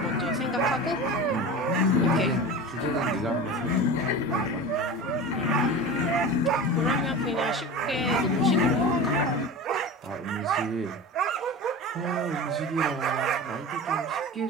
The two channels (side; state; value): both; normal; correlation 0.31